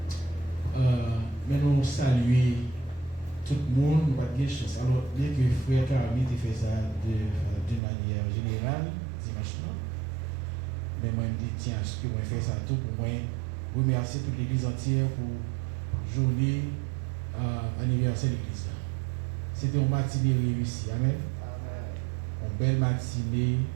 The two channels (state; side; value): drops out; left; at 7.8 s